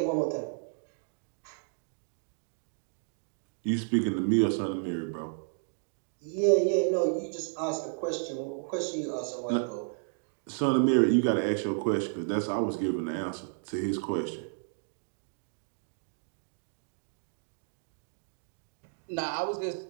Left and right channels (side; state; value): left; silent; digital silence